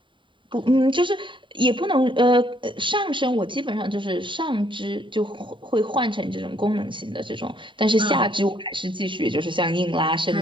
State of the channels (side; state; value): left; late; 0.24 ms